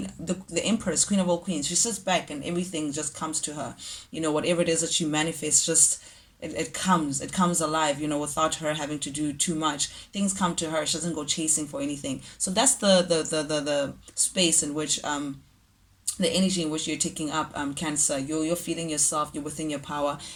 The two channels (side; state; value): both; identical; correlation 1.00